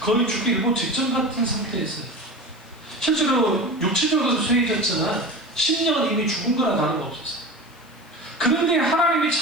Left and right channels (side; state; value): left; noise; hiss, 30 dB below the sound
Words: 거의 죽기 일보 직전 같은 상태였어요. 실제로 육체적으로 쇠해졌지만 심령은 이미 죽은 거나 다름없었어요. 그런데 하나님이